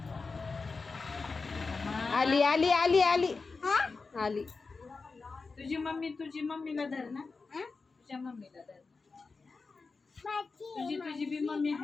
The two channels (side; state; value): right; quieter; 4.3 dB